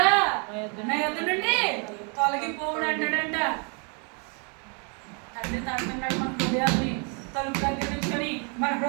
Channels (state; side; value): quieter; left; 36.3 dB